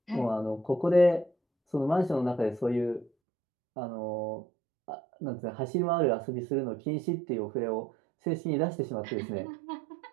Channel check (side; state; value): left; drops out; at 3.1 s